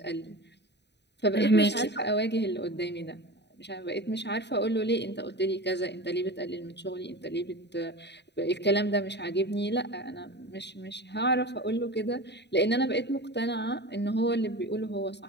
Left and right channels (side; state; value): right; late; 0.50 ms